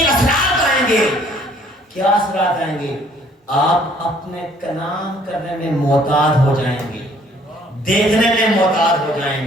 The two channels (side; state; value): both; normal; correlation 0.60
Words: اثرات آئیں گے۔ کیا اثرات آئیں گے؟ آپ اپنے کلام کرنے میں محتاط ہو جائیں گے، دیکھنے میں محتاط ہو